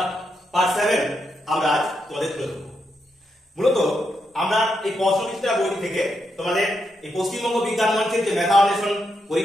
পার্ট 7 আমরা আজ তোমাদের তুলে ধরব। মূলত আমরা এই প্রশ্নবিচিত্রা বইটি থেকে তোমাদের এই পশ্চিমবঙ্গ বিজ্ঞান মঞ্চের যে মেধা অন্বেষণ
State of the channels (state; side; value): normal; both; correlation 0.82